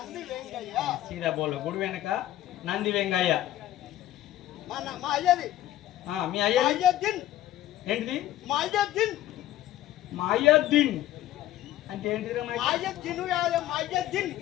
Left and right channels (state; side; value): quieter; right; 13.9 dB